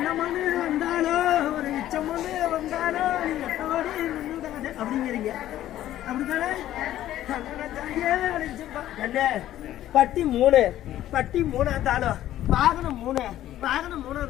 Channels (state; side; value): quieter; right; 13.0 dB